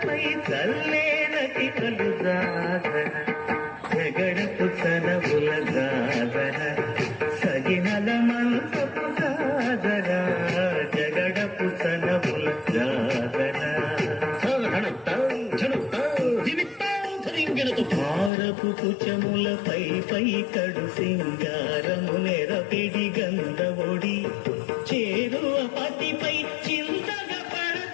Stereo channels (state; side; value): drops out; right; at 18.3 s